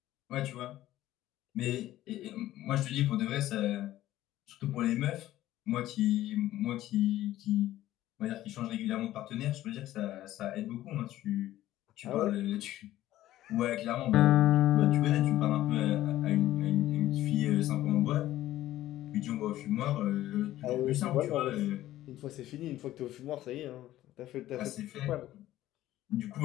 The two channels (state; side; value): quieter; right; 14.3 dB